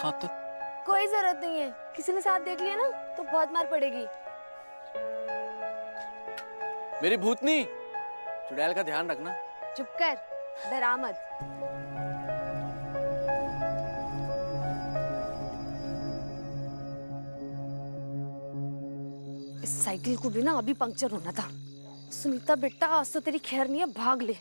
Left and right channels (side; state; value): both; inverted; correlation -1.00